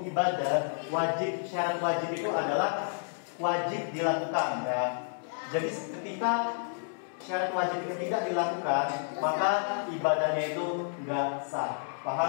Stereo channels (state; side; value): silent; right; digital silence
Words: ibadah, syarat wajib itu adalah wajib dilakukan ya. Jadi ketika syarat wajib itu tidak dilakukan, maka ibadahnya itu nggak sah.